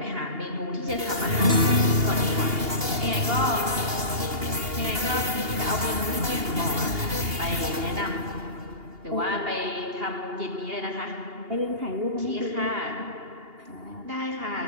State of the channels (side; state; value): left; late; 2.8 ms